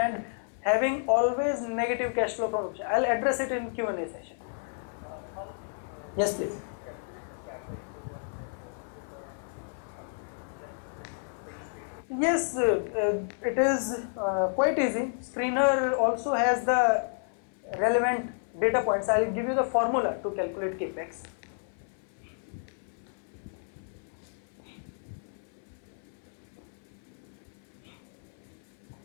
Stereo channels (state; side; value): silent; right; 57 dB below the other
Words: having always negative cash flow from option. I'll address it in Q&A session. Yes, please. Yes, it is quite easy. Screener also has the relevant data points. I will give you the formula to calculate capex.